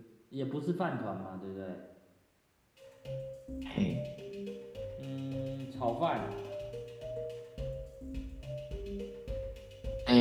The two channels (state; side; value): identical; both; correlation 1.00